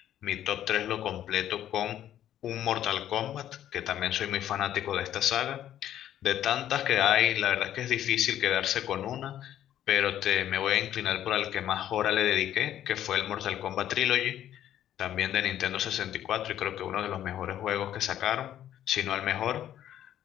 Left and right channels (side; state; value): right; quieter; 11.4 dB